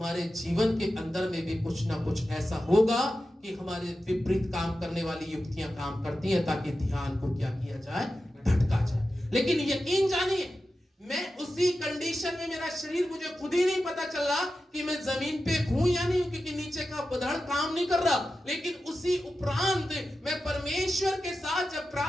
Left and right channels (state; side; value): normal; both; correlation 0.92